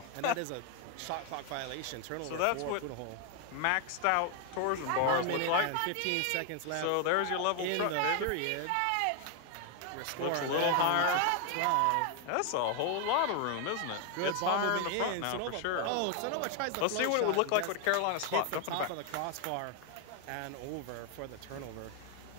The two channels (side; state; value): both; different; correlation 0.00